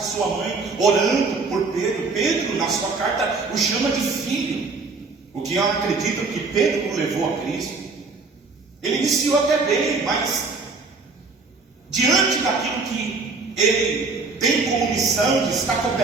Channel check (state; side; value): quieter; left; 4.1 dB